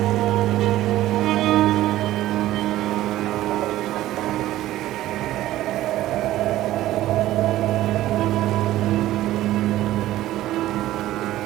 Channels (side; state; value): left; quieter; 14.8 dB